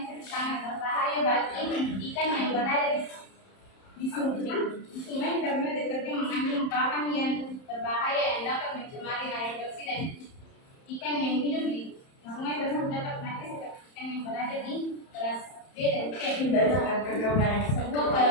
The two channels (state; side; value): late; right; 31 ms